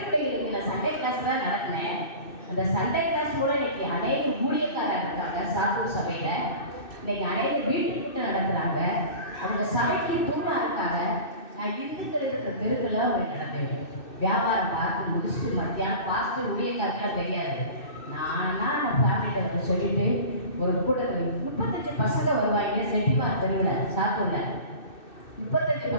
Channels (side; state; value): right; late; 2.6 ms